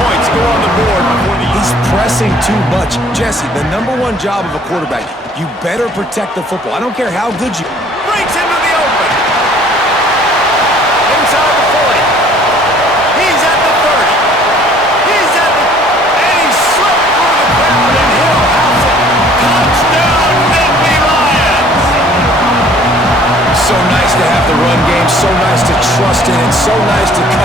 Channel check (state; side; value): normal; both; correlation 0.55